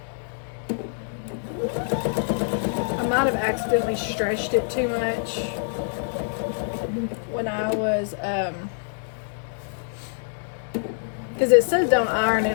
might have accidentally stretched it too much when I was because it says don't iron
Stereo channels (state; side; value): silent; right; digital silence